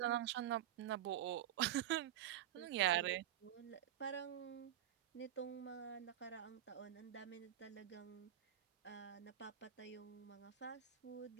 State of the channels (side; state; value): left; quieter; 11.9 dB